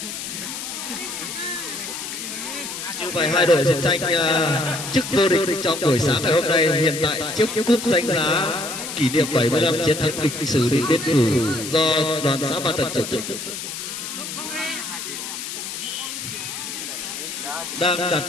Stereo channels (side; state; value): left; noise; hiss, 7 dB below the sound